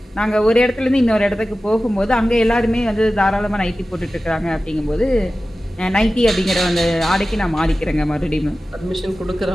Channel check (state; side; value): normal; both; correlation 0.95